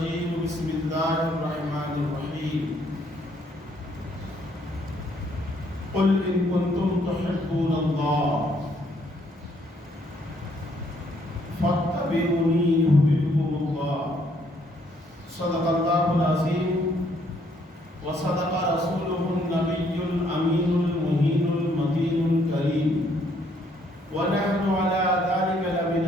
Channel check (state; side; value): normal; both; correlation 0.68